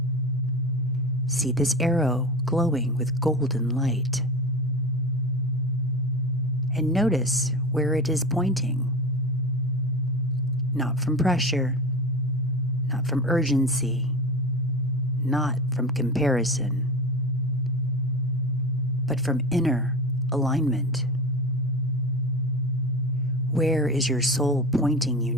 See this arrow glowing with golden light. And notice where it is pointing. Not from pressure, not from urgency, not from comparison, but from inner alignment. Where is your soul pointing you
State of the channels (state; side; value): normal; both; correlation 0.28